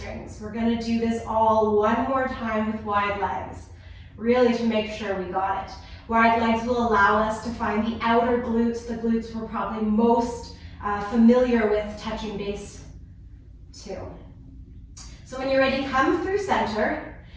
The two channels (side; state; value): both; identical; correlation 1.00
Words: We're going to do this all one more time with wide legs, really to make sure we got it. Wide legs will allow us to find the outer glutes, the glutes we're probably most familiar with touching base to. So when you're ready, come through center.